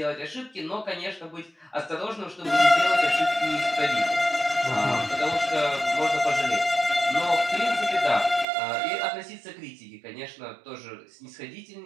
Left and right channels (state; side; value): drops out; left; at 8.5 s